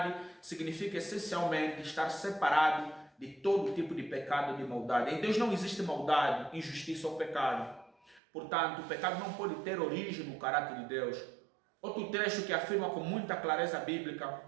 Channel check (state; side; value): drops out; left; at 8.2 s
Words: significa essencialmente estar separado de todo tipo de pecado e de maldade. Em Deus não existe maldade, injustiça ou pecado. Portanto, o pecado não pode ter origem no caráter de Deus. Outro trecho que afirma com muita clareza bíblica